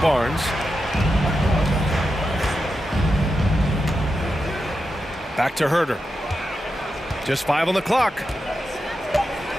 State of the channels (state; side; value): normal; both; correlation 0.88